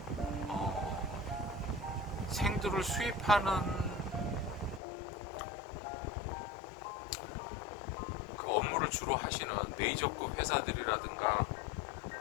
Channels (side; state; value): right; drops out; at 4.8 s